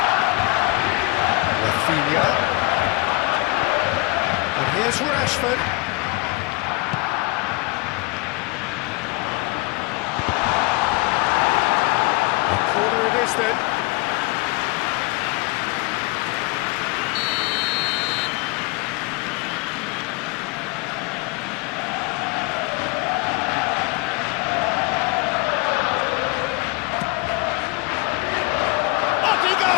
Rafinha. And here's Rashford. A corner it is then. Up he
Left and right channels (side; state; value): right; quieter; 26.2 dB